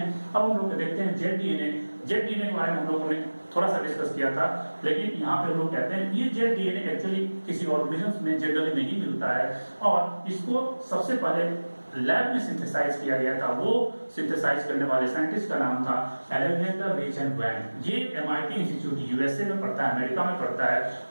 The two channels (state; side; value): inverted; both; correlation -1.00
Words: अब हम लोग देखते हैं जेड डीएनए। जेड डीएनए के बारे में हम लोगों ने थोड़ा सा डिस्कस किया था, लेकिन यहाँ पे हम लोग कहते हैं ये जेड डीएनए एक्चुअली किसी ऑर्गेनिज्म में जनरली नहीं मिलता है, और इसको सबसे पहले लैब में सिंथेसाइज किया गया था। वो सिंथेसाइज करने वाले साइंटिस्ट का नाम था अलेक्जेंडर रिच एंड वैन। ये एमआईटी इंस्टीट्यूट यूएसए में पड़ता है, अमेरिका में पड़ता है।